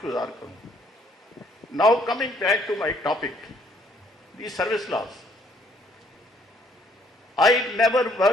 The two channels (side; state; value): both; normal; correlation 0.65